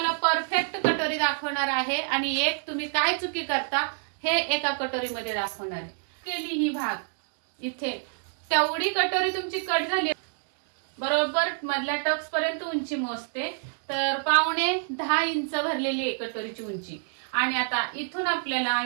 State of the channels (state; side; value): silent; left; 60 dB below the other